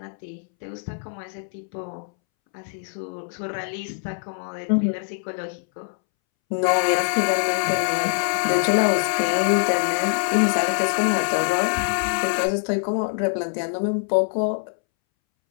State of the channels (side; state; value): right; silent; 63 dB below the other